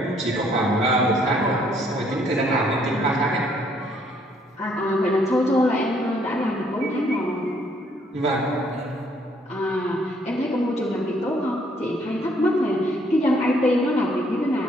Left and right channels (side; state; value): both; normal; correlation 0.66